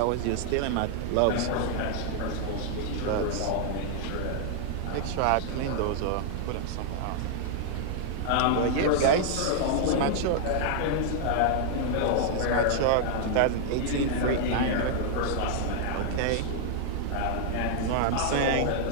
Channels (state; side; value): different; both; correlation -0.01